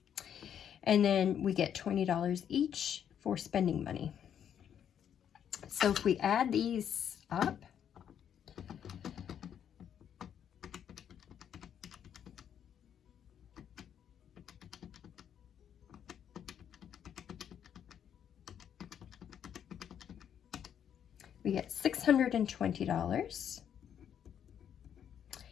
And then we get $20 each for spending money. So if we add these up, we get $620.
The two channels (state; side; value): quieter; right; 9.0 dB